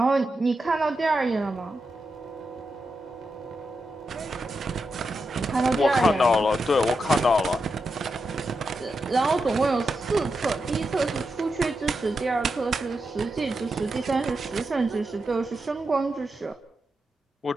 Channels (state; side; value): normal; both; correlation 0.87